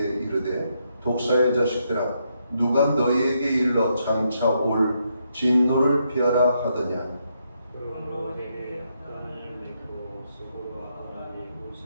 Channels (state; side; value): inverted; both; correlation -0.78